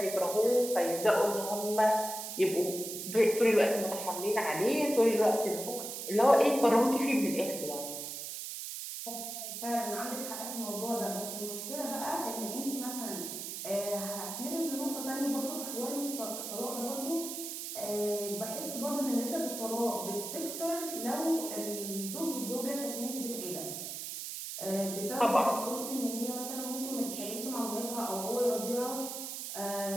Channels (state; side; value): noise; right; hiss, 6 dB below the sound